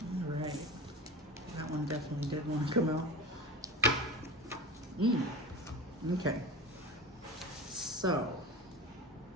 All right, that one definitely did want to come out. Okay, so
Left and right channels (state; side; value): normal; both; correlation 0.30